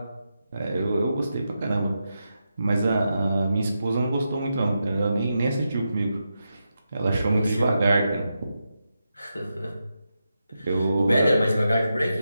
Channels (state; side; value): inverted; both; correlation -0.87